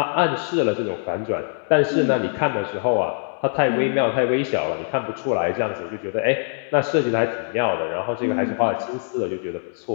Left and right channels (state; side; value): silent; right; digital silence